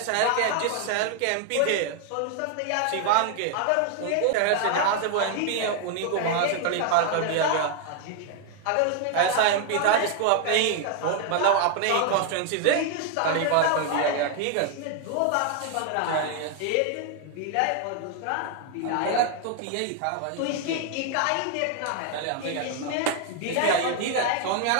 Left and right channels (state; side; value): different; both; correlation 0.00